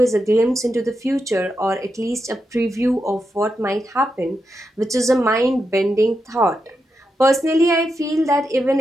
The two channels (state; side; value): normal; both; correlation 0.86